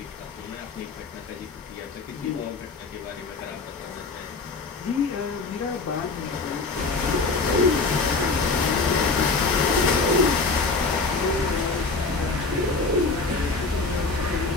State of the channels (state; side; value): quieter; right; 3.9 dB